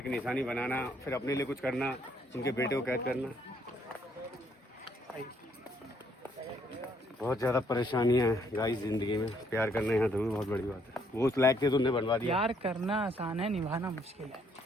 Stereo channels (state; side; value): normal; both; correlation 0.68